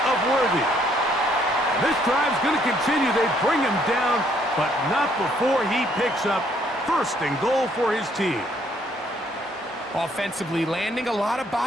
of Worthy. This drive's going to continue. They bring him down, but not before he picks up first and goal for his team. Offensively, landing a lot of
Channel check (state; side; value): normal; both; correlation 0.67